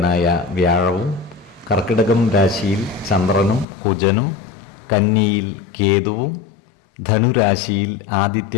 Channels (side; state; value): right; drops out; at 3.7 s